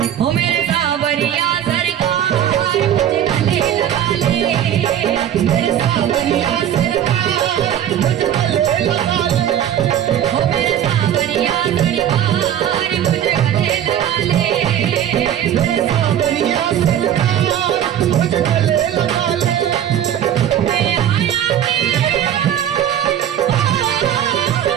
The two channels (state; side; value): quieter; left; 10.4 dB